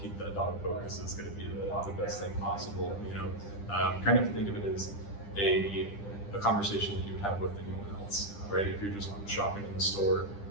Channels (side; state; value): right; late; 10 ms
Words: keep that dog focus is going to be the best thing possible. Kind of think of it as a conversation that you would have with anyone else, right? If you're just shopping in the store